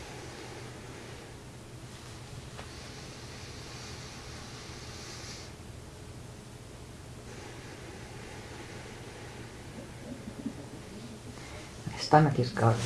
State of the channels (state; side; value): identical; both; correlation 1.00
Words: Stomach is gone.